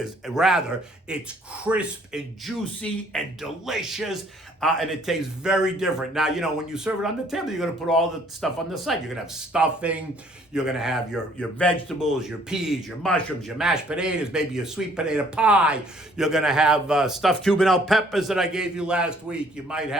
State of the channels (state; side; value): normal; both; correlation 0.61